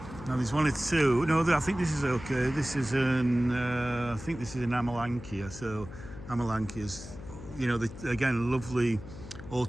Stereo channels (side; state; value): left; noise; hum, 14 dB below the sound